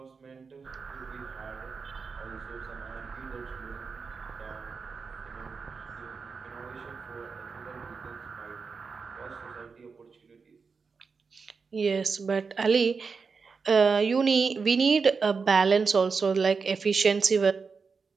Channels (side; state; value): left; quieter; 5.1 dB